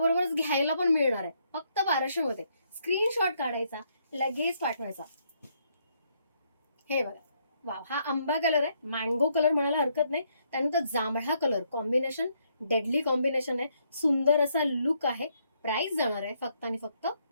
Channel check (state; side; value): inverted; both; correlation -0.73